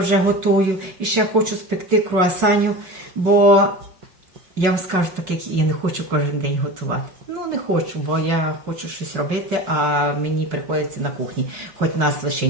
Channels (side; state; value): left; late; 5.4 ms